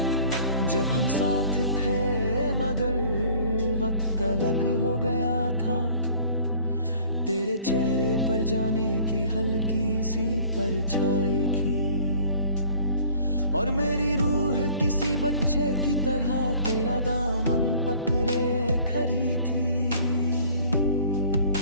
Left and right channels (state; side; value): inverted; both; correlation -0.52